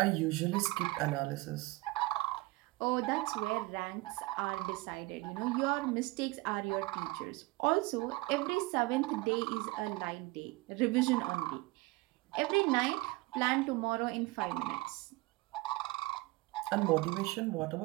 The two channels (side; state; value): left; quieter; 21.6 dB